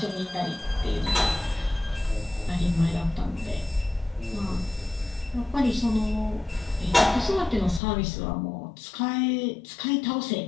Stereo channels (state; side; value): drops out; right; at 7.8 s